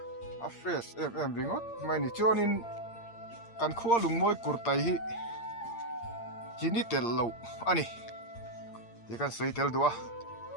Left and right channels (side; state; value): right; late; 8.6 ms